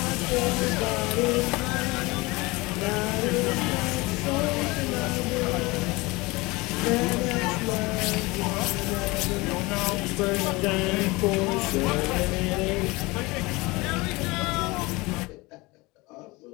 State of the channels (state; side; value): quieter; right; 23.2 dB